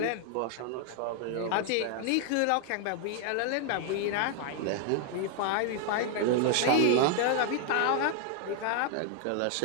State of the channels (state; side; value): different; both; correlation 0.00